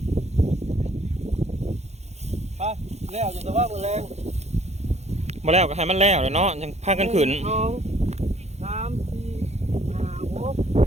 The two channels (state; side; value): late; left; 0.32 ms